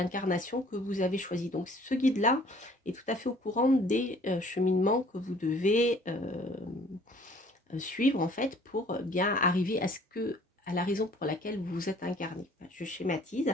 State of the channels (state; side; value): normal; both; correlation 0.55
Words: que vous avez choisie. Donc ce guide-là est tout à fait au courant des cheminements que vous devez suivre en fait pour bien arriver à la raison pour laquelle vous vous êtes incarné. Je schématise,